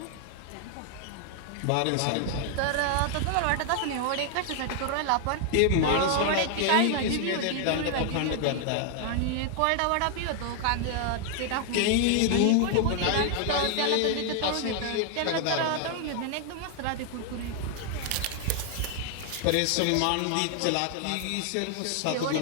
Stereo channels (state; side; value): different; both; correlation 0.00